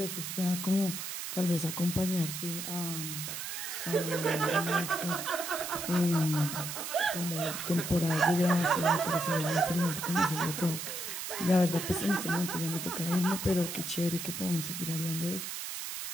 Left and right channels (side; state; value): right; noise; hiss, 6 dB below the sound